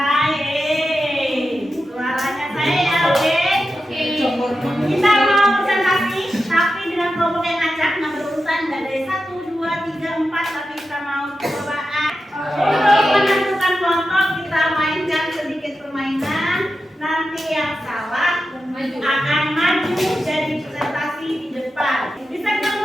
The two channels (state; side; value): normal; both; correlation 0.90